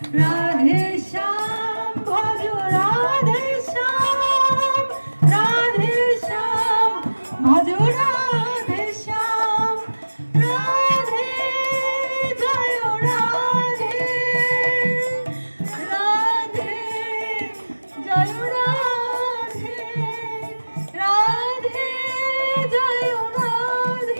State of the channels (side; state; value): both; inverted; correlation -1.00